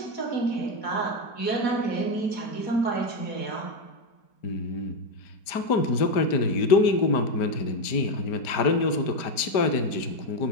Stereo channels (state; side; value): late; right; 4.5 ms